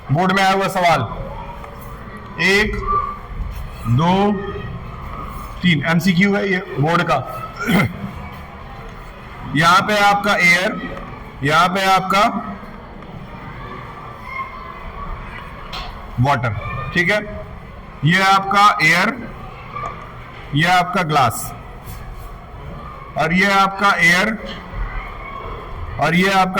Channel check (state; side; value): identical; both; correlation 1.00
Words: बोर्ड में आया हुआ सवाल 1 2 3 एमसीक्यू है ये बोर्ड का। यहां पे आपका एयर, यहां पे आपका वाटर। ठीक है, ये आपका एयर, ये आपका ग्लास, और ये आपका एयर, और ये